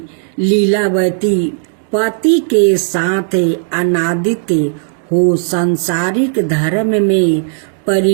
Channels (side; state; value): left; silent; digital silence